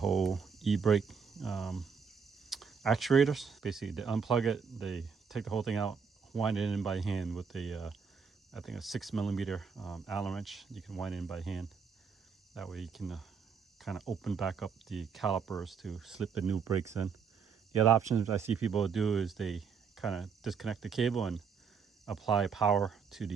e-brake actuators. Basically, they unplug it, they take the whole thing out, wind it in by hand with a, I think a 6mm Allen wrench. You can wind it in by hand. That way you can kind of open back up the calipers to slip the new brakes in. The other options I see people do is they kind of disconnect the cable and apply power to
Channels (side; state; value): left; quieter; 6.0 dB